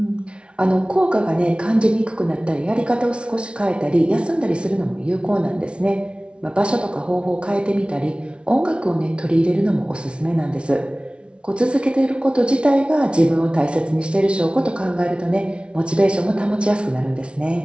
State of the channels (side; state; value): left; late; 0.058 ms